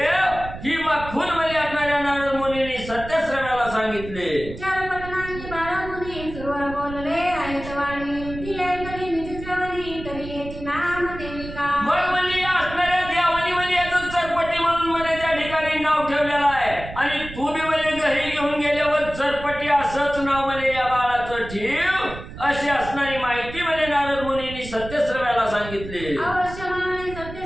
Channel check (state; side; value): noise; right; rumble, 12 dB below the sound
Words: ही खून म्हणजे असणाऱ्या नारद मुनींनी सत्यश्रव्याला सांगितले. चरपटनानी बाळ मुनी सुरवर बोलले आहेत वाणी ती ऐकली निज श्रवणी तरी याची नाम देविका. मग म्हणजे या असणाऱ्या देवानी म्हणजे याचं चरपटी म्हणून म्हणजे त्या ठिकाणी नाव ठेवलेलं आहे आणि तुम्ही म्हणजे घरी घेऊन गेल्यावर चरपटी असंच नाव म्हणजे या बाळाचं ठेव अशी असणारी माहिती म्हणजे नारद मुनींनी सत्यश्रव्याला सांगितली. अवश्य म्हणाले